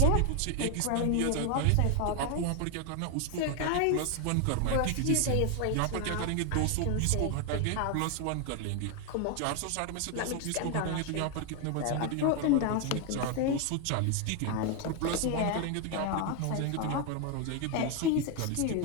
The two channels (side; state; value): both; different; correlation 0.01